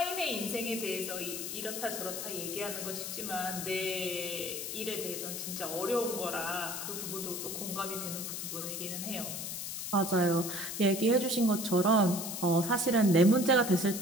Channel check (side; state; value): left; noise; hiss, 5 dB below the sound